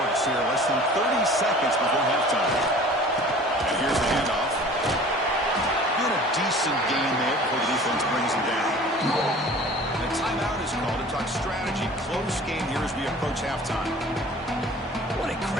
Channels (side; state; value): both; normal; correlation 0.45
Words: here. Less than 30 seconds before halftime. And here's the handoff. Been a decent game there before the defense brings him down. And a timeout is called to talk strategy. Close game here as we approach halftime. What a